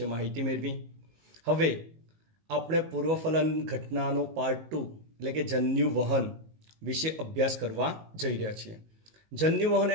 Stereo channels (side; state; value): left; late; 19 ms